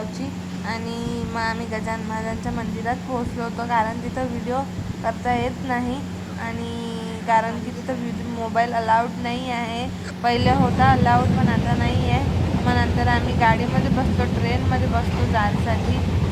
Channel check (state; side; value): identical; both; correlation 1.00